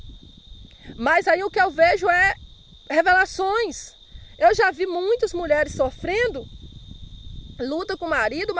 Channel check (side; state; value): both; identical; correlation 1.00